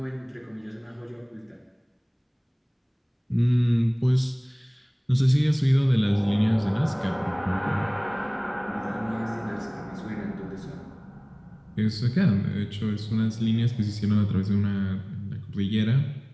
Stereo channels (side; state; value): both; identical; correlation 1.00